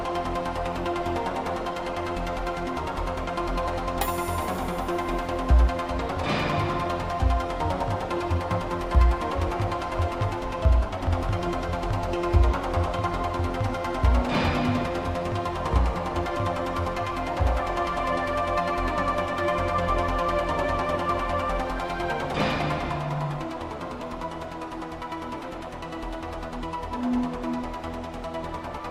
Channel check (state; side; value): identical; both; correlation 1.00